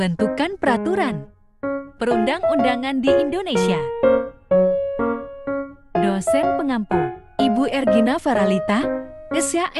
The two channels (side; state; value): both; identical; correlation 1.00